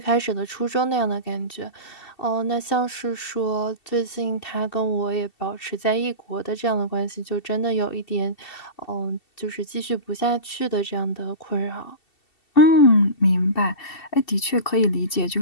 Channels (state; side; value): late; right; 2.7 ms